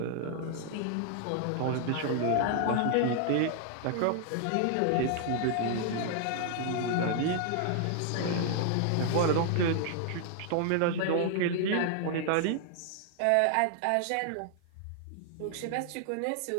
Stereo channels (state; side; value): different; both; correlation 0.00